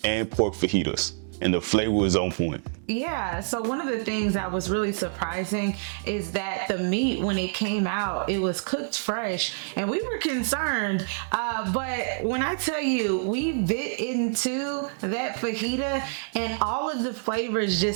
and pork fajitas, and the flavor was on point. Yeah, so one of the things that was really surprising is that the meat, when it came out, it was cooked fresh, and we were concerned, but when I tell you, we bit into that fajita and all of the flavors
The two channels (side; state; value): left; silent; digital silence